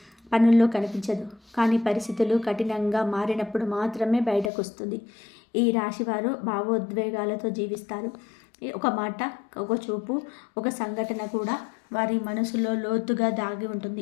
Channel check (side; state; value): right; drops out; at 4.5 s